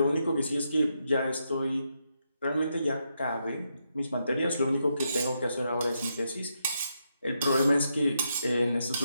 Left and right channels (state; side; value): inverted; both; correlation -0.81